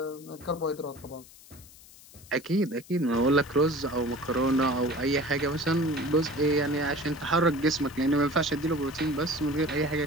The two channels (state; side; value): noise; left; hiss, 22 dB below the sound